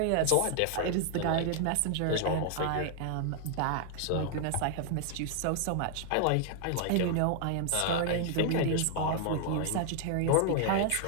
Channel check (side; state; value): both; different; correlation 0.00